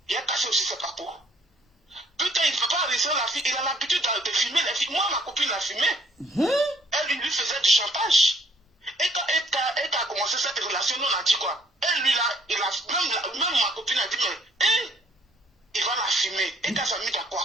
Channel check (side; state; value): both; normal; correlation 0.63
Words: a cassé aussi ses papos. Putain, il ne peut pas arrêter la fille. Il a l'habitude de filmer les filles. Moi, ma copine l'a filmé. Elle lui faisait du chantage. Et quand elle a commencé cette relation, nous on a dit quoi? Elle, lui, même ma copine a dit, mais il va la filmer. Et quand ça mis